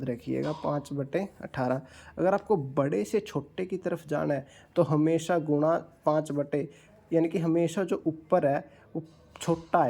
रखिएगा 5/18। अगर आपको बड़े से छोटे की तरफ जाना है तो हमेशा गुणा 5 यानी कि हमेशा जो ऊपर है वो छोटा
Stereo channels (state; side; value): identical; both; correlation 1.00